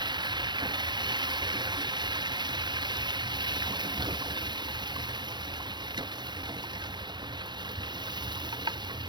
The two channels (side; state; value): left; late; 0.22 ms